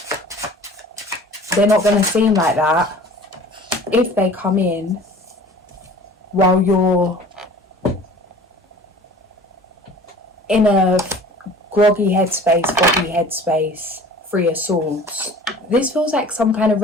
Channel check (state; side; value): normal; both; correlation 0.45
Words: they're not going to seem like that if they come in while you're in a groggy headspace, 3 of Swords. This feels like some kind of